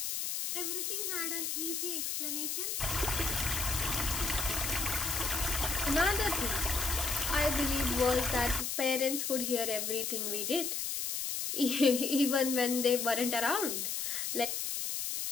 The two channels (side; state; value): left; noise; hiss, 2 dB below the sound